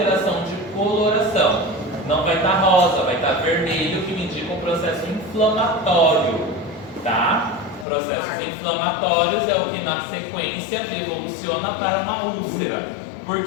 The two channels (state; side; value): drops out; right; at 7.9 s